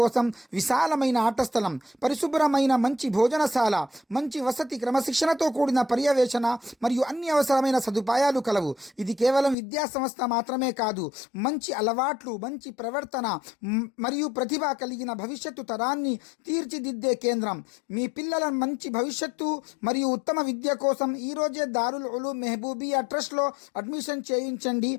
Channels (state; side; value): drops out; right; at 9.6 s